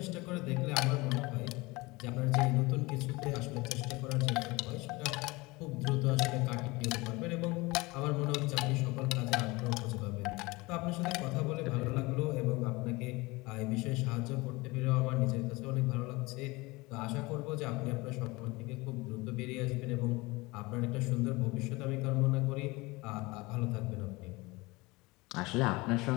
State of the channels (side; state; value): right; quieter; 23.2 dB